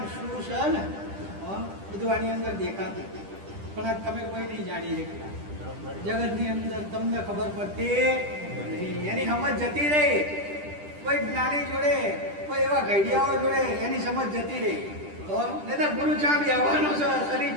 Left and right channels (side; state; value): left; late; 10 ms